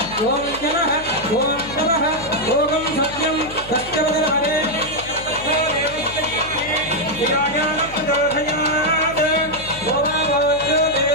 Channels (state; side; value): noise; left; hum, 17 dB below the sound